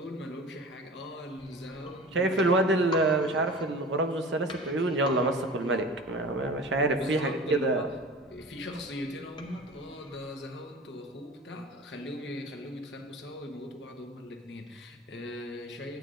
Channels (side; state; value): both; normal; correlation 0.38